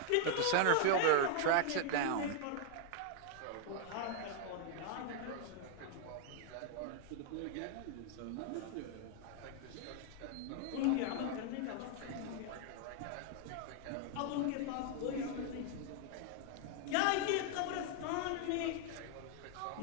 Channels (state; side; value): different; both; correlation 0.00